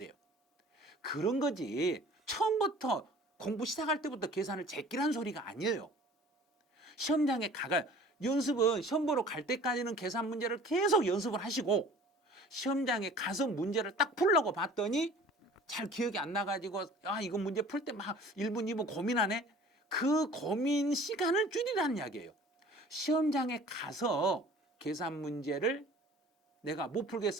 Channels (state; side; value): normal; both; correlation 0.47